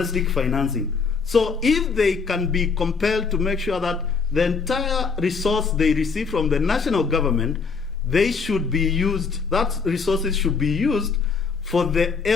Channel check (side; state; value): right; quieter; 5.2 dB